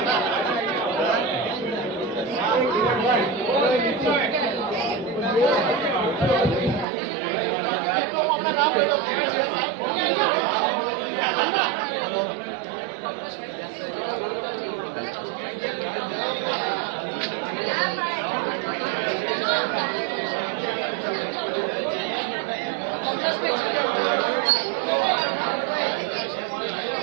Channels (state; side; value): drops out; left; at 6.9 s